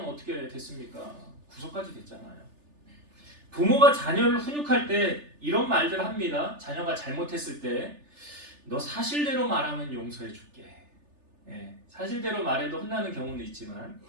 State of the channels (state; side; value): late; left; 3.4 ms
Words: 어떻게 됐습니까? 구속까지 됐잖아요. 부모가 자녀를 훈육할 때 이런 말들을 합니다. 자녀가 잘못했을 때 너 사실대로 말하면 용서해 줄게. 사실대로 말해도 혼나는 경우는 있지만,